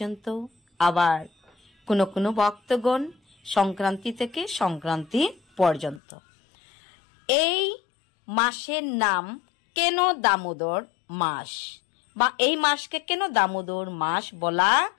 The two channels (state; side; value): drops out; right; at 6.0 s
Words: আবার কোনো কোনো ভক্তগণ সংক্রান্তি থেকে সংক্রান্তি পর্যন্ত। এই মাসের নাম কেন দামোদর মাস, বা এই মাসকে কেন দামোদর মাস বলা